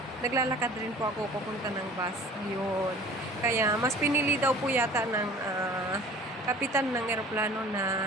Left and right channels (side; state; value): both; normal; correlation 0.46